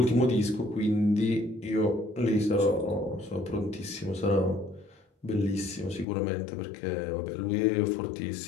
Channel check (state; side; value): drops out; right; at 6.1 s